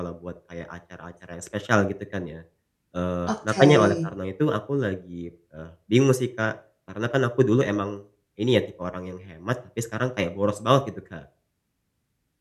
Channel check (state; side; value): identical; both; correlation 1.00